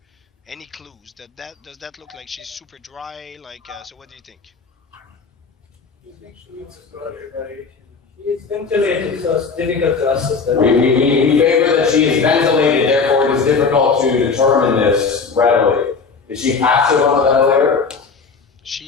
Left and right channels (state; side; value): quieter; right; 4.9 dB